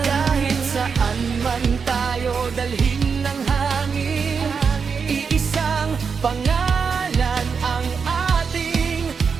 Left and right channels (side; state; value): left; quieter; 5.8 dB